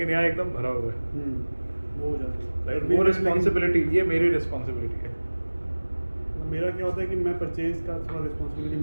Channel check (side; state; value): both; inverted; correlation -1.00